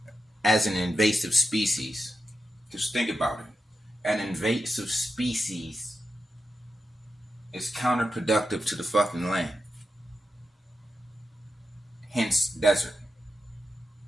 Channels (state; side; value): normal; both; correlation 0.88